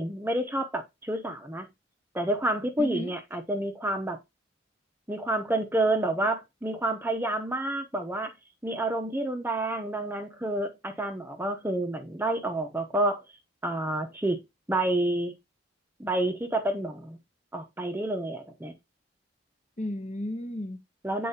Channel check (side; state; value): both; normal; correlation 0.59